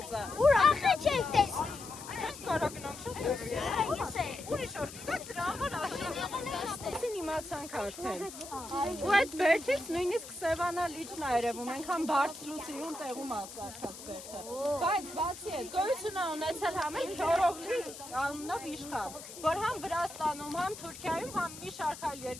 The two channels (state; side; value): noise; left; hiss, 14 dB below the sound